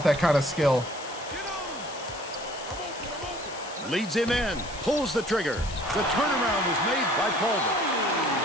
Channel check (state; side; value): noise; left; hiss, 15 dB below the sound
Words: that kind of skill. Leads him in, pulls the trigger. The turnaround was made by Calder.